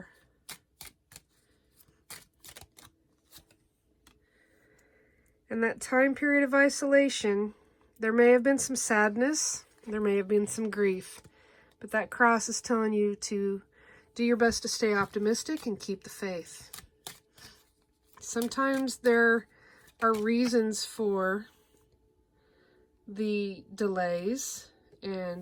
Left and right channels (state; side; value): identical; both; correlation 1.00